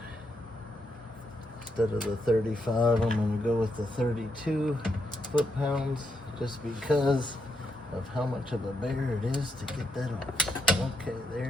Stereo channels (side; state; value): both; normal; correlation 0.81